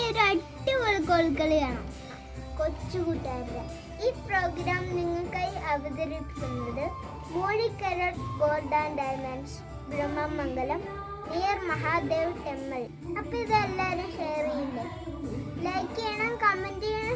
ഒരു അടിപൊളി കോൽക്കളിയാണ് കൊച്ചുകൂട്ടുകാരുടെ. ഈ പ്രോഗ്രാം നിങ്ങൾക്കായി അവതരിപ്പിക്കുന്നത് Moozhikkara gold and diamonds, Brahmamangalam, near Mahadev temple. അപ്പൊ ഇതെല്ലാവരും ഷെയർ ചെയ്യില്ലേ, ലൈക്ക് ചെയ്യണം, കമന്റ്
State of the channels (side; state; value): both; identical; correlation 1.00